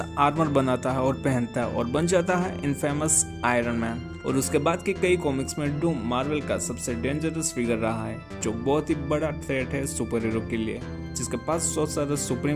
आर्मर बनाता है और पहनता है और बन जाता है इनफेमस आयरन मैन। और उसके बाद के कई कॉमिक्स में डूम मार्वल का सबसे डेंजरस फिगर रहा है, जो बहुत ही बड़ा थ्रेट है सुपर हीरो के लिए, जिसके पास सोर्सरर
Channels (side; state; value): both; identical; correlation 1.00